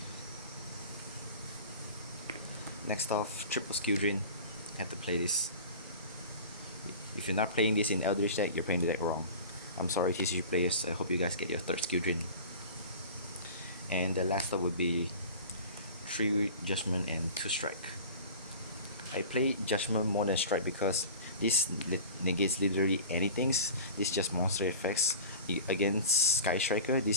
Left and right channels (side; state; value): both; inverted; correlation -0.37